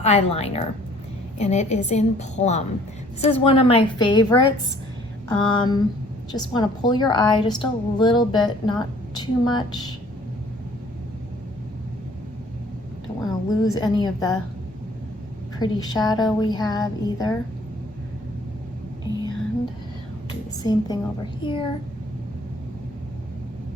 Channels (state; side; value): normal; both; correlation 0.56